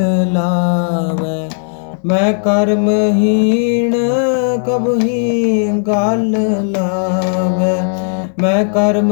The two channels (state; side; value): silent; right; digital silence